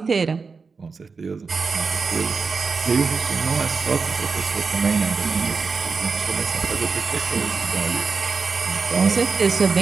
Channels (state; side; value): quieter; left; 4.8 dB